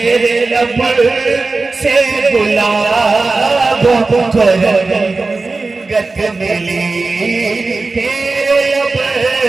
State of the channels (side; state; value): left; quieter; 3.7 dB